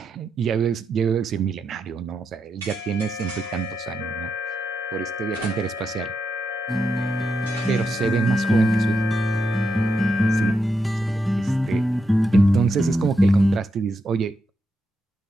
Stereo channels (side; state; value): both; normal; correlation 0.84